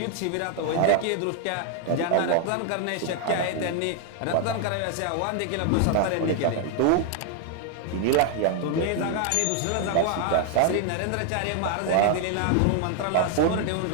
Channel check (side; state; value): both; different; correlation 0.00